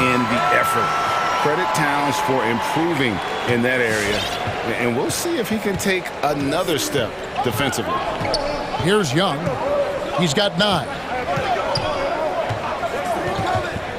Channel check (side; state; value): both; identical; correlation 1.00